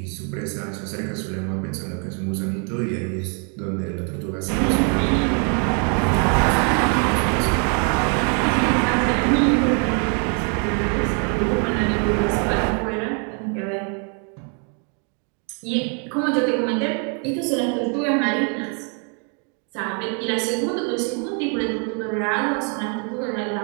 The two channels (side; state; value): left; quieter; 39.7 dB